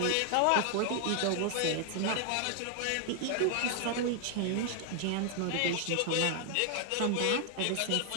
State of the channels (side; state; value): both; different; correlation 0.00